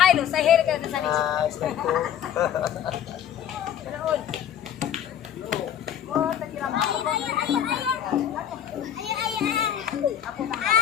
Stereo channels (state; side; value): quieter; right; 9.9 dB